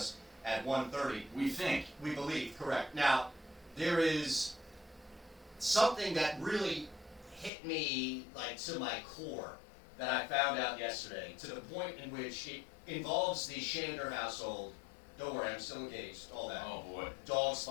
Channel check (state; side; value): drops out; right; at 7.5 s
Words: at 1:30. We think. We believe, correct. Now, there is something that really hit me like to my core that I found out yesterday, to the point in which it involves the Shander household. Don't worry, I'm still engaged, all that. Oh boy. Dog's